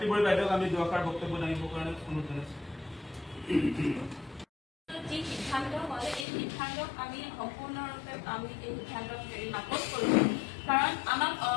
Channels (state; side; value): drops out; right; at 6.2 s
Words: বড়ি বাইদেউক আমি দুআষাৰ বক্তব্য দাঙিবৰ কাৰণে অনুৰোধ জনাইছোঁ। যি সিদ্ধান্ত হয় এই সিদ্ধান্তক আমি সম্পূৰ্ণৰূপে আমি এই সিদ্ধান্তক নাকচ কৰিছোঁ। কাৰণ আমাক